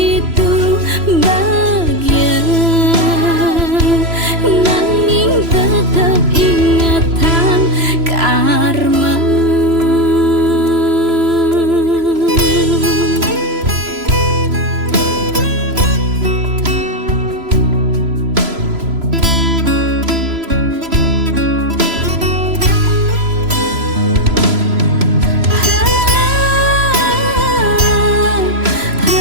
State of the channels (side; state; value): left; late; 3.0 ms